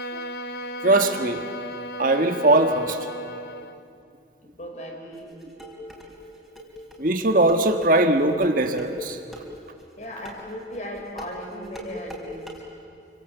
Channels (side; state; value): both; normal; correlation 0.04